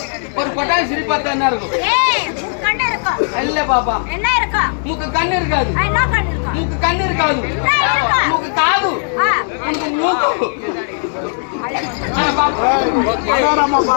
ஒரு கொட்டாய் சிரிப்பாத்த என்ன இருக்கும்? இல்ல பாப்பா, மூக்கு கண்ணு இருக்காது. மூக்கு கண்ணு இருக்காது. மூக்கு காது. உனக்கு மூக்கு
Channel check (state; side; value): silent; right; digital silence